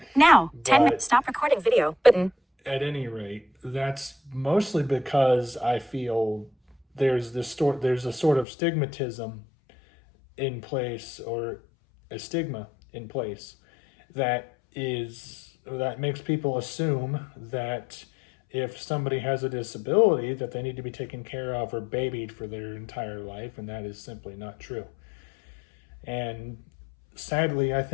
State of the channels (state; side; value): drops out; right; at 8.5 s